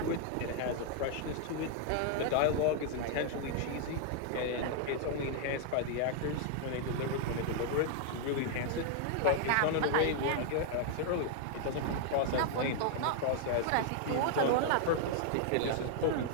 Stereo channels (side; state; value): both; different; correlation 0.00